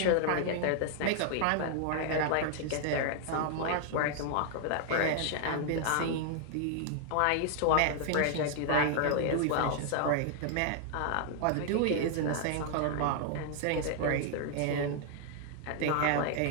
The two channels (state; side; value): different; both; correlation 0.00